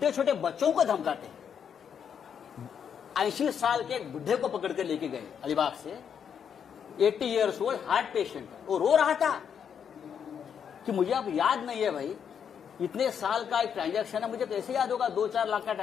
छोटे बच्चों को धमकाते हैं. 80 साल के एक बुढ़े को पकड़ कर लेके गए अलीबाग से, 80 ईयर्स ओल्ड हार्ट पेशेंट. वो रो रहा था कि मुझे अब याद नहीं है भाई, इतने साल का एक ट्रांजैक्शन है, मुझे कैसे याद होगा, 2-4 लाख का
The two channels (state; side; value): quieter; right; 7.7 dB